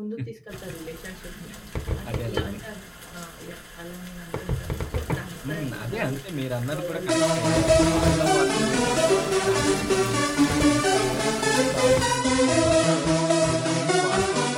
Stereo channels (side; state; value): both; identical; correlation 1.00